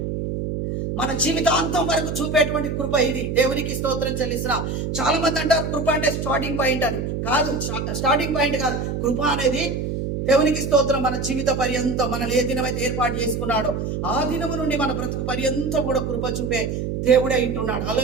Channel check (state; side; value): noise; right; hum, 3 dB below the sound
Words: మన జీవితాంతం వరకు చూపేటువంటి కృప ఇది. దేవునికి స్తోత్రం చెల్లిస్తున్నా. చాలా మంది అంటారు కృప అంటే స్టార్టింగ్ పాయింట్ అని. కాదు, స్టార్టింగ్ పాయింట్ కాదు. కృప అనేది దేవునికి స్తోత్రం మన జీవిత పర్యంతం, మనల్ని ఏ దినమైతే ఏర్పాటు చేసుకున్నాడో ఆ దినము నుండి మన బ్రతుకు పర్యంతం కూడా కృప చూపే దేవుడే ఇంటున్నాడు.